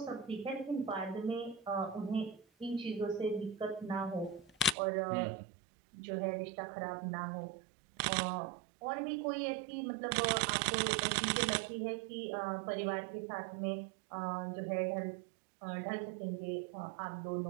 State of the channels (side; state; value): left; drops out; at 4.8 s